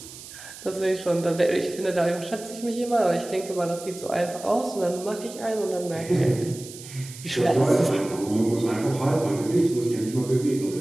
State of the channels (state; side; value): noise; right; hiss, 15 dB below the sound